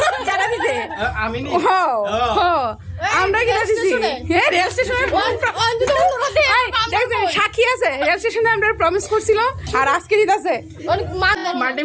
আমরা কি দিছি? হ্যাঁ, রেল স্টেশনে সাক্ষী আছে, রেল স্টেশনে আমরা প্রমিস করছিল, আর আজকে দিতেছে।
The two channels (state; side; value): identical; both; correlation 1.00